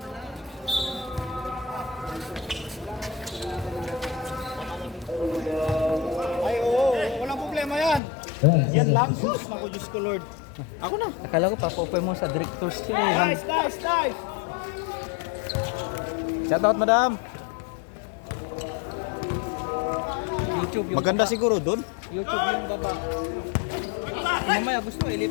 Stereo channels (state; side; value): drops out; right; at 8.0 s